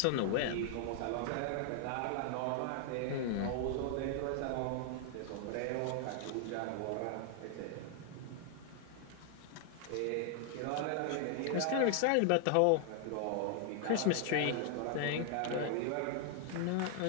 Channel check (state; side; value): different; both; correlation 0.00